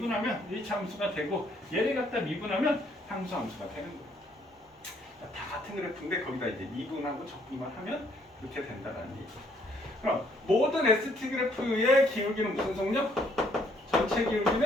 1차 함수가 되고 얘를 갖다 미분하면 상수함수가 되는 거예요. 다 같은 그래프인데 거기다 이제 미분하고 적분만 하면 그렇게 된다는 얘기죠. 그럼 모든 ST 그래프의 기울기는 무슨 속력? 전체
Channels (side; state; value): both; normal; correlation 0.66